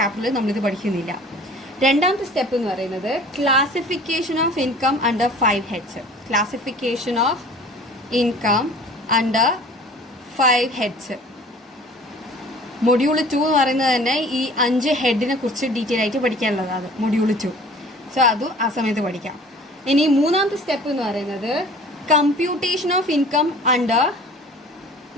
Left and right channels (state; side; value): normal; both; correlation 0.47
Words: നമ്മളിത് പഠിക്കുന്നില്ല. രണ്ടാമത്തെ സ്റ്റെപ്പ് എന്ന് പറയുന്നത് classification of income under 5 heads. Classification of income under 5 heads. Module 2 എന്ന് പറയുന്നത് തന്നെ ഈ 5 ഹെഡിനെ കുറിച്ച് ഡീറ്റെയിൽ ആയിട്ട് പഠിക്കാനുള്ളതാണ് മൊഡ്യൂൾ 2. സോ അതും ആ സമയത്ത് പഠിക്കാം. ഇനി മൂന്നാമത്തെ സ്റ്റെപ്പ് എന്ന് പറയുന്നത് computation of income under